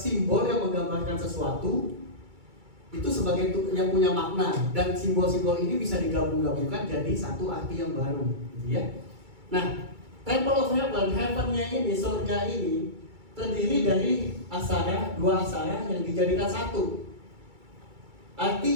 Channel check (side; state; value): left; late; 2.3 ms